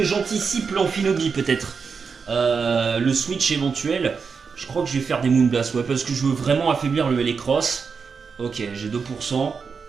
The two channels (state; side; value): quieter; left; 5.5 dB